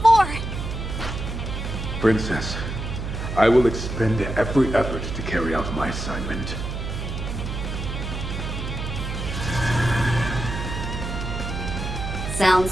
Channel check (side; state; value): right; noise; hum, 5 dB below the sound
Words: Princess, I will expend every effort to carry out my assignment.